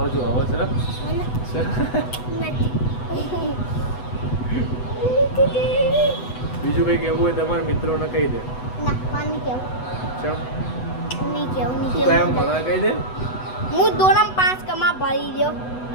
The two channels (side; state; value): right; late; 8.0 ms